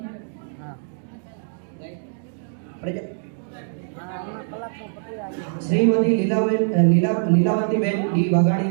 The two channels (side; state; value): left; silent; digital silence